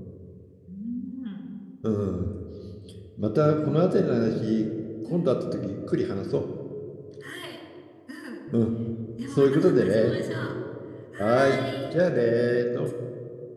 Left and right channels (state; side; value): identical; both; correlation 1.00